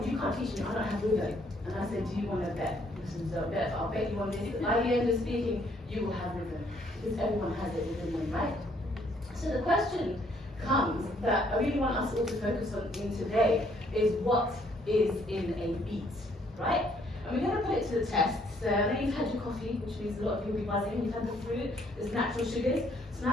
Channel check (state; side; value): normal; both; correlation 0.66